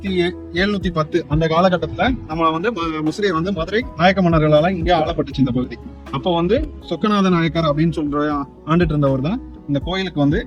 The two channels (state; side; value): identical; both; correlation 1.00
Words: அந்த காலகட்டத்துல நம்ம முசிறியை மதுரை நாயக்க மன்னர்களால இங்கே ஆளப்பட்டுச்சு இந்த பகுதி. அப்போ சொக்கநாத நாயக்கர் அப்படின்னு சொல்ற ஆண்டுட்டு இருந்தவர் தான் இந்த கோயிலுக்கு